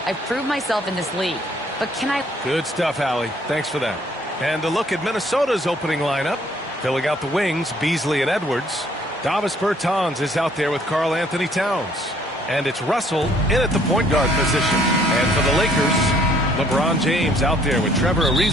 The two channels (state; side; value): normal; both; correlation 0.62